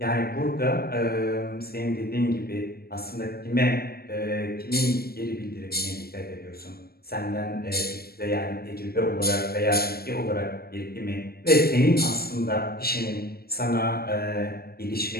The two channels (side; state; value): right; late; 0.45 ms